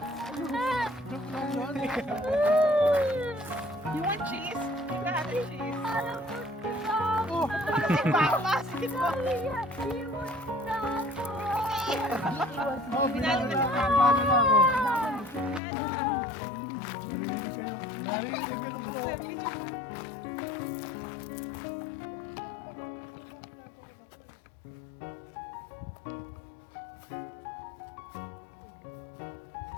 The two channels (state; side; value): drops out; right; at 15.6 s